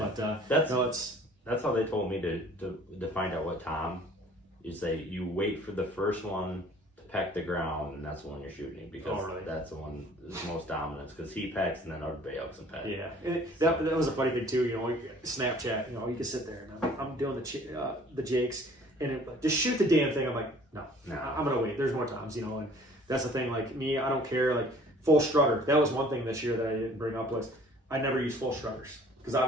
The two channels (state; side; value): normal; both; correlation 0.52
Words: that's how they told me to find out what tom. You say you wait for the first one peck the ground, and that's the one you're shooting, because that's the one is most dominant, because he pecks and then everybody else can peck. Yeah, and that was a funny thing too. Snapchat. You can sit there and I'm doing the jakes, and it, like, just shoot the damn thing. I'm like, no, No. I'm gonna wait. There's more times, you know, and that's the thing. Like me, I don't care. Like full strutter. That was one thing this year that I didn't bring up was I never use full strutters because